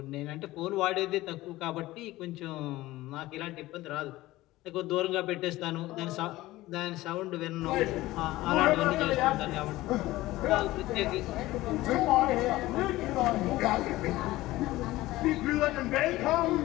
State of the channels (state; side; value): quieter; right; 17.6 dB